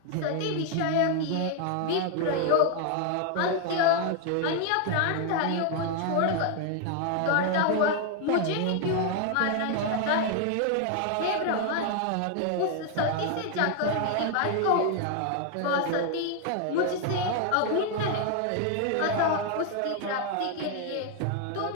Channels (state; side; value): different; both; correlation 0.00